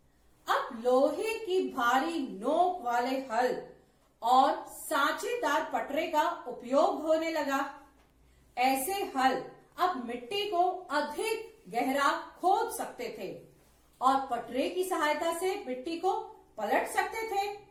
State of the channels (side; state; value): both; identical; correlation 1.00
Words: अब लोहे की भारी नोक वाले हल और सांचेदार पटरे का उपयोग होने लगा। ऐसे हल अब मिट्टी को अधिक गहरा खोद सकते थे और पटरे की सहायता से मिट्टी को पलट सकते थे।